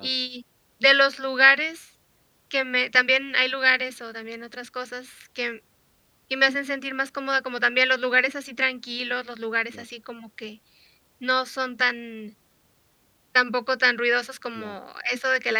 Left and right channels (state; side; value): identical; both; correlation 1.00